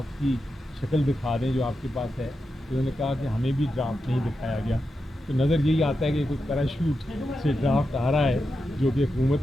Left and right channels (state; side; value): normal; both; correlation 0.88